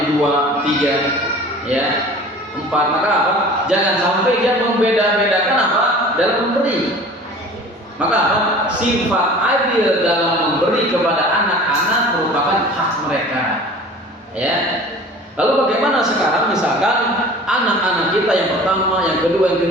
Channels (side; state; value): both; normal; correlation 0.43